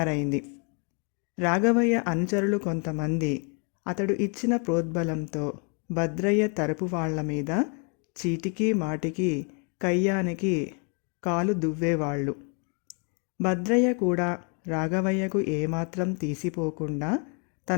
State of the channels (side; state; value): right; quieter; 37.5 dB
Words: రాఘవయ్య అనుచరులు కొంతమంది అతడు ఇచ్చిన ప్రోద్బలంతో భద్రయ్య తరపు వాళ్ల మీద చీటికి మాటికి కయ్యానికి కాలు దువ్వేవాళ్ళు. భద్రయ్య కూడా రాఘవయ్యకు ఏమాత్రం తీసిపోకుండా